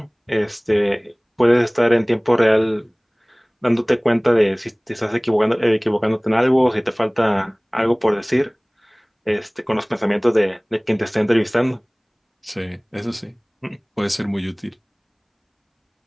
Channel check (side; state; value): both; identical; correlation 1.00